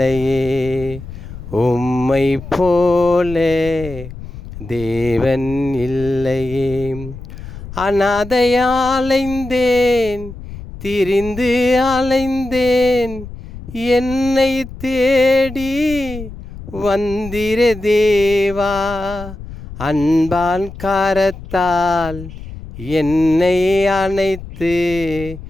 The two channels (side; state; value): left; noise; rumble, 13 dB below the sound